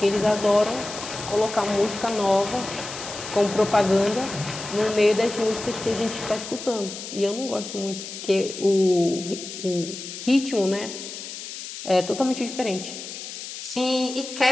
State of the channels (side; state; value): left; noise; hiss, 10 dB below the sound